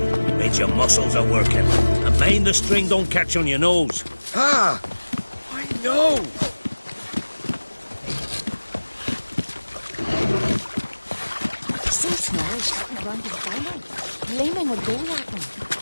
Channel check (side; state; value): both; inverted; correlation -1.00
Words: Means your muscles are working. And mind the string don't catch on your nose. Ah! I know! So small, shouting around his final. Gleaming would go at him.